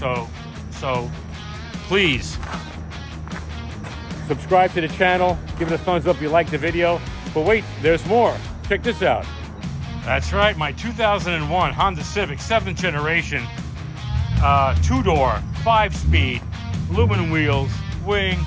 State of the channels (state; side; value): identical; both; correlation 1.00